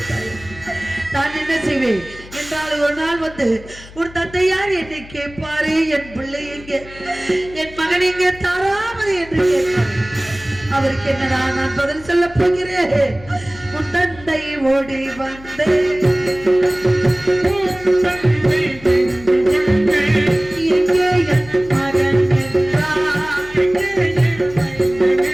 நான் என்ன செய்வேன் என்றால் ஒரு நாள் வந்து ஒரு தந்தையார் என்னை கேட்பாரே, என் பிள்ளை எங்கே, என் மகன் எங்கே தாராமது என்று கேட்பார். அவருக்கு என்னடா நான் பதில் சொல்ல போகிறேன். உன் தந்தை ஓடி வந்தேன் எங்கே என் மகன்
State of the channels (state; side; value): noise; left; hum, 19 dB below the sound